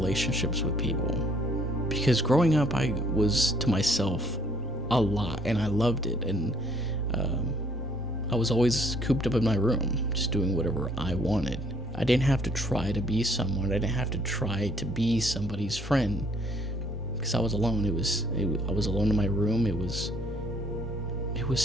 with people. Because growing up, I was to myself a lot, and I loved it. And I was always cooped up in my room, just doing whatever I wanted. I didn't have to try to be someone. I didn't have to try to be somebody's friend, because I was alone. I was alone in my room. It was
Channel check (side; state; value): both; normal; correlation 0.63